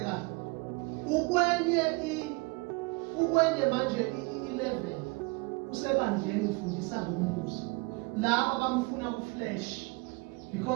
Ukwenye manje i-11 usebandleni ufundisa ngombuso. Laba bamfuna ku-flesh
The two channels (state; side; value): quieter; left; 26.4 dB